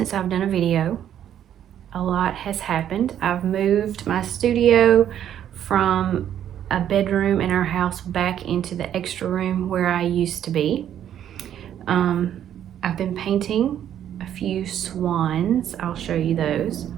I've done a video. A lot has happened. I've moved my studio from a bedroom in our house back into the extra room where I used to be. I've been painting a few swans. I'll show you those.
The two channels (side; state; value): left; quieter; 10.3 dB